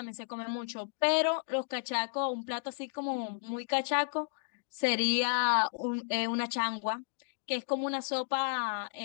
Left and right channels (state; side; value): silent; right; digital silence